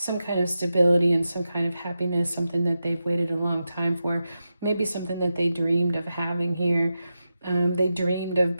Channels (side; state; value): both; inverted; correlation -0.91